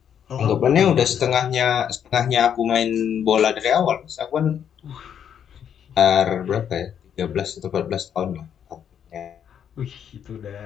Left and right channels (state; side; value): quieter; right; 8.7 dB